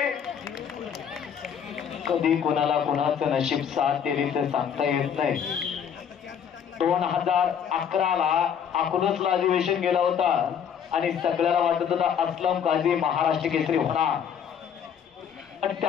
कधी कोणाला कोणाचं नशीब साथ दिली तर सांगता येत नाही. 2011ला अकलूजला अधिवेशन गेला होता आणि सगळ्याला वाटत होता असलम काझी महाराष्ट्र केसरी होणार. पण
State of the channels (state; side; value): quieter; right; 8.0 dB